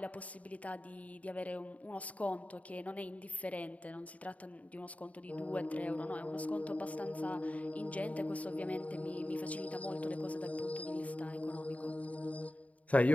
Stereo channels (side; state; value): right; late; 0.069 ms